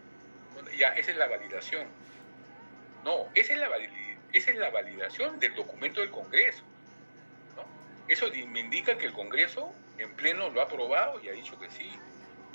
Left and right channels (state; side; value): inverted; both; correlation -1.00